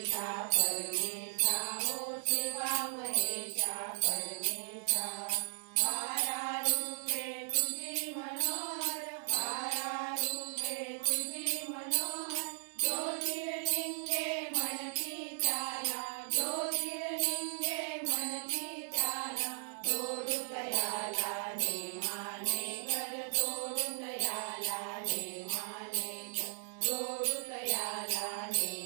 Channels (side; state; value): left; silent; digital silence